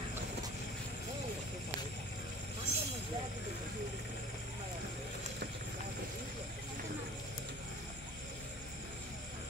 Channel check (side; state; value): both; normal; correlation 0.45